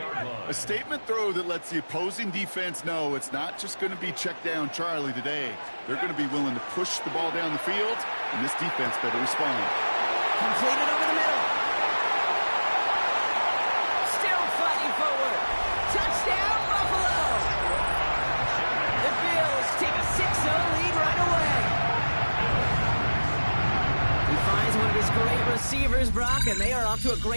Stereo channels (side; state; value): both; inverted; correlation -1.00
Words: A statement throw that lets the opposing defense know it's not just going to be check down Charlie today. They're going to be willing to push the ball down the field, and this defense better respond. Completed over the middle. Still fighting forward. Touchdown, Buffalo. The Bills take a 6-0 lead right away. He finds one of his great receivers, Brock, and they are off to a